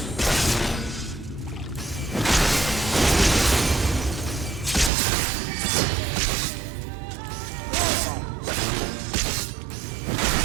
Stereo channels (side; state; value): left; drops out; at 4.9 s